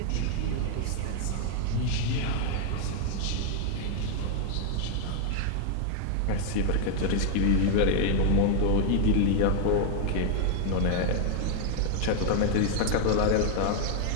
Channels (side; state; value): both; different; correlation 0.00